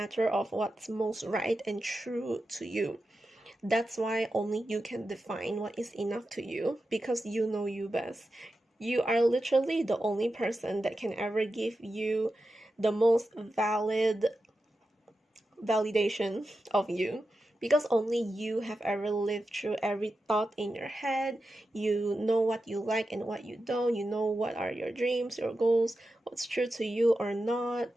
of what's most right and true to you. That's why only you can define what is enough to you, because you know you best. You are literally the only person that can ever give you the most valid validation of you, because only you have ever lived through every thought in your head. You know what you like and what you don't. You know what are your dreams, your goals, what's true to you or not.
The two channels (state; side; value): normal; both; correlation 0.91